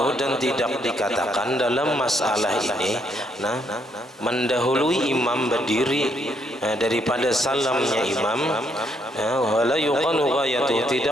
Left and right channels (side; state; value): both; normal; correlation 0.72